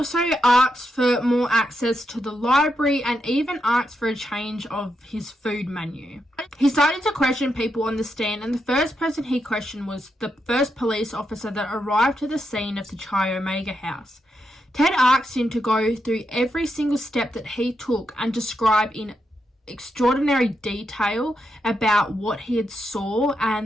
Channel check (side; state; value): both; normal; correlation 0.84